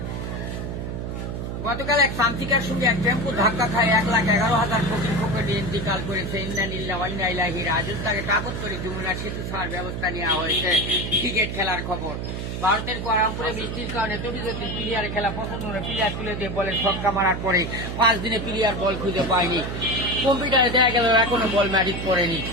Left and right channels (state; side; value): noise; right; hum, 5 dB below the sound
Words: গতকাল এক প্রান্তিকার সঙ্গে এক টেম্পো ধাক্কা খায় 1,11,000 ফকির ফকির ইন্তিকাল করেছে। ইন্নালিল্লাহি ওয়া ইন্না ইলাইহি রাজিউন। তাকে কাবত করে যমুনার সেতু ছাড়ার ব্যবস্থা নেওয়া হয়েছে। ক্রিকেট খেলার খবর। ভারতের কোয়ালালামপুরে বৃষ্টির কারণে তবিজুদ্দিন প্লেয়ারে খেলা পছন্দ করে প্লেয়ার তুলে দিয়ে বলে ছক্কা মারার পরে 5 দিনে প্লেয়ার বল খুঁজে পায়নি। কম্পিউটারে দেখা গেল এখনো বল ম্যাজিক পড়েনি।